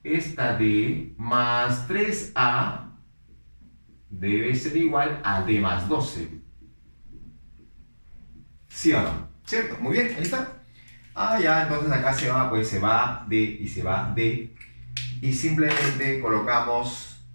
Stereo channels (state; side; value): inverted; both; correlation -1.00